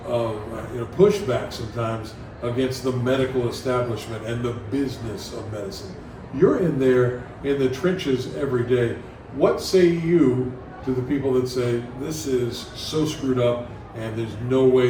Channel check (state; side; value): identical; both; correlation 1.00